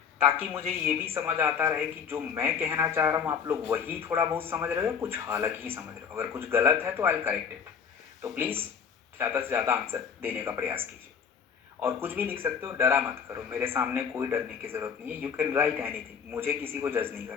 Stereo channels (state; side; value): quieter; right; 6.9 dB